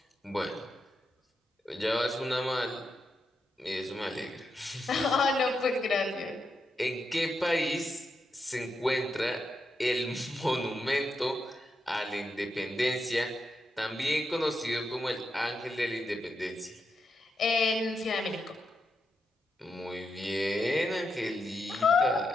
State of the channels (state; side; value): normal; both; correlation 0.85